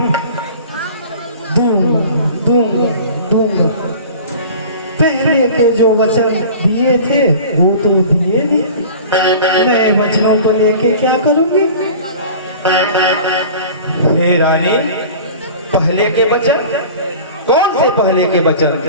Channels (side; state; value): both; inverted; correlation -0.40